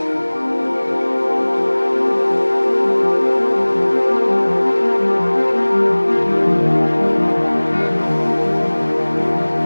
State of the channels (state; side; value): inverted; both; correlation -1.00